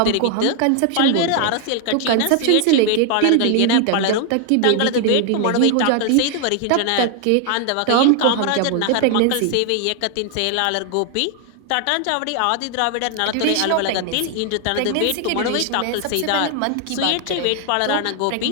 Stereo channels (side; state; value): both; different; correlation 0.00